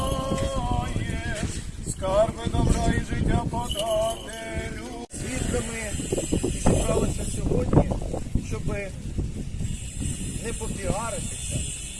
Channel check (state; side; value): identical; both; correlation 1.00